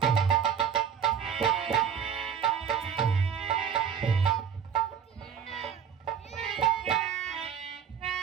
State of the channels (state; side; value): quieter; left; 7.9 dB